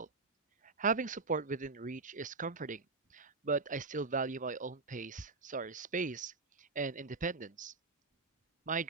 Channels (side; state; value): left; quieter; 4.1 dB